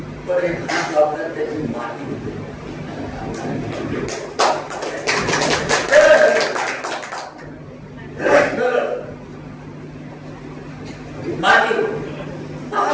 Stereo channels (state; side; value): identical; both; correlation 1.00